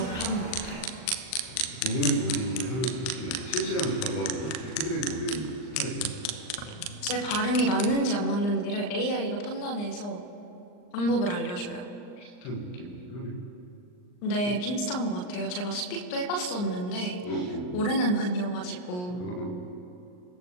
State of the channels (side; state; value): right; late; 39 ms